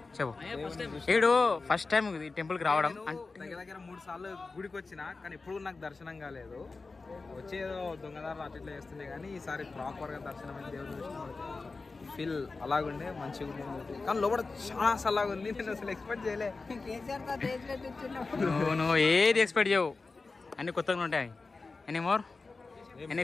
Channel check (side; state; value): right; quieter; 3.9 dB